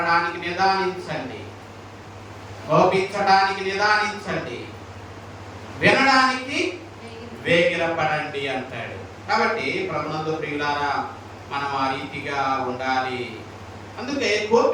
నిదానించండి, కోపించడానికి నిదానించండి, వినడానికి వేగిరపడండి అంటాడు. కాబట్టి ప్రభునందు ప్రియులారా, మనం ఆ రీతిగా ఉండాలి. అందుకే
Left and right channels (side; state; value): both; identical; correlation 1.00